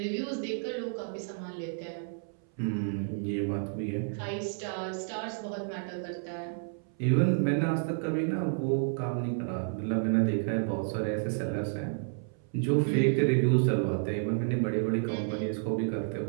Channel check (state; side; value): silent; left; 57 dB below the other